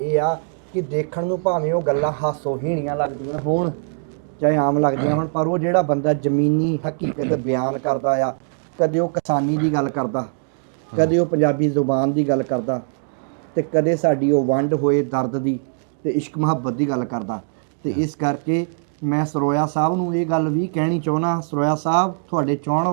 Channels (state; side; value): silent; left; digital silence